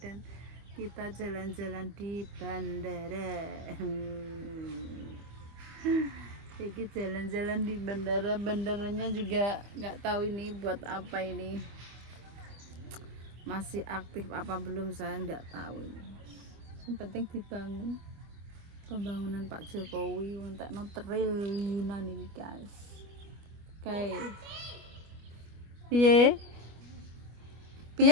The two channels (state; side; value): late; left; 25 ms